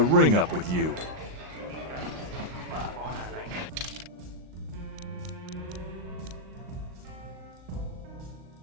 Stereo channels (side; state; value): left; late; 38 ms